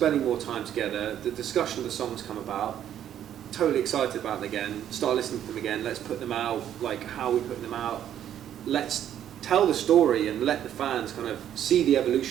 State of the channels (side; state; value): left; quieter; 10.4 dB